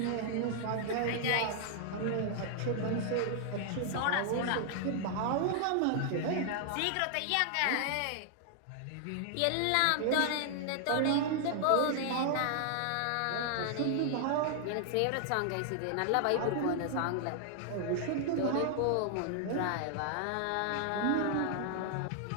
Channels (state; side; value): different; both; correlation 0.00